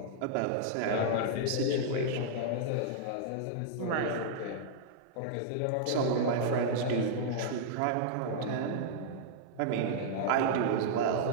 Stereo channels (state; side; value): different; both; correlation -0.01